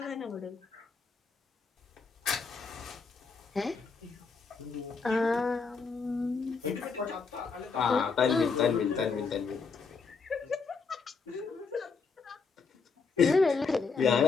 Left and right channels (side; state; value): right; quieter; 4.9 dB